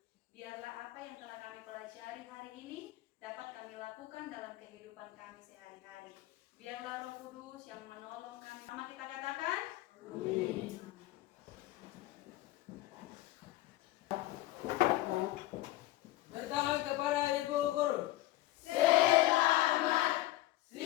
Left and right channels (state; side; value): quieter; right; 16.7 dB